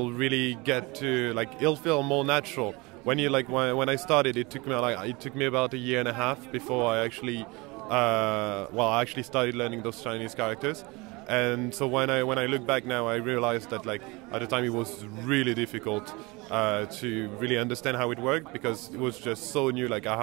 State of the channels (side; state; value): left; quieter; 25.0 dB